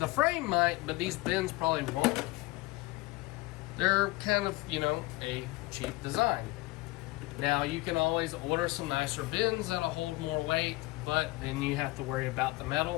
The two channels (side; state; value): right; quieter; 21.0 dB